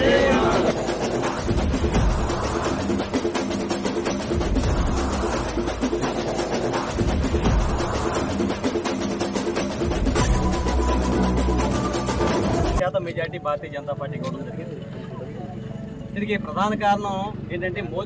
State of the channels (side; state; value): both; identical; correlation 1.00